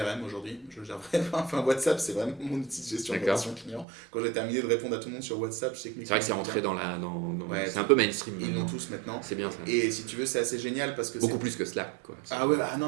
aujourd'hui. WhatsApp c'est vraiment mon outil de gestion de relations clients. Quand j'ai terminé de répondre à tout le monde sur WhatsApp, je sais que c'est vrai que c'est rentré c'est un peu mainstream. Ils l'ont tous maintenant. C'est bien ça. Et si tu veux c'est assez génial parce que beaucoup plus que Slack, quoi.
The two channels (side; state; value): left; drops out; at 3.9 s